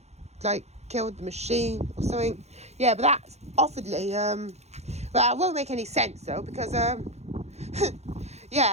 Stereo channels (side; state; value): left; late; 0.31 ms